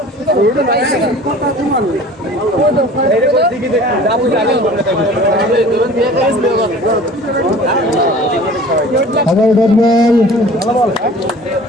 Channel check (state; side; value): normal; both; correlation 0.44